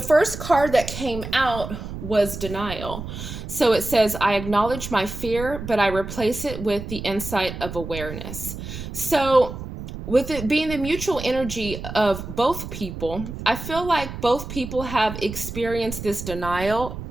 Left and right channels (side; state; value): right; noise; rumble, 9 dB below the sound